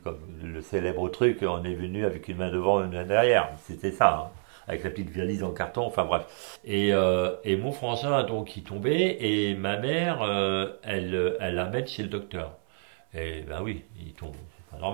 le célèbre truc, on est venu avec une main devant, une main derrière, c'était ça, hein, avec la petite valise en carton, enfin bref. Et mon frangin donc il tombait et ma mère elle l'amène chez le docteur. Et ben oui, il tombe, c'est pas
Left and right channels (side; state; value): left; silent; 56 dB below the other